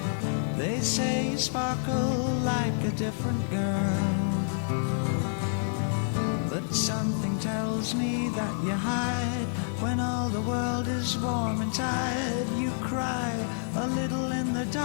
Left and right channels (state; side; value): silent; right; digital silence